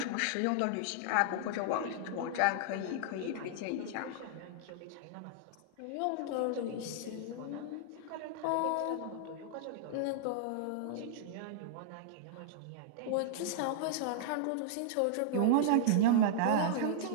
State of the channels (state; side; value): different; both; correlation -0.01